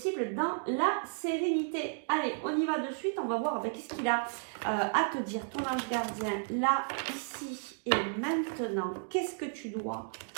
dans la sérénité. Allez, on y va de suite, on va voir qu'est-ce qu'il a à te dire, ton ange gardien, là, ici et maintenant. Qu'est-ce que tu dois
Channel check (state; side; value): silent; left; digital silence